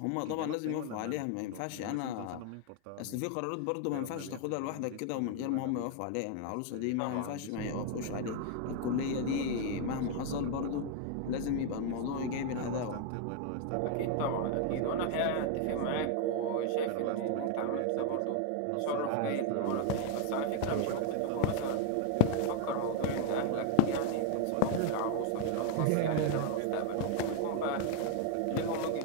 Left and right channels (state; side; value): different; both; correlation 0.01